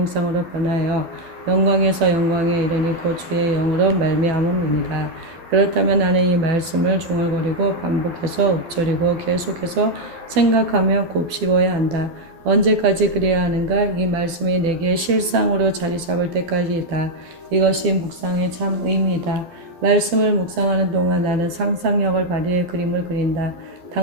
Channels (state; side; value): late; left; 12 ms